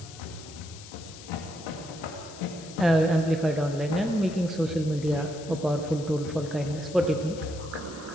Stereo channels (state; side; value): noise; left; hiss, 16 dB below the sound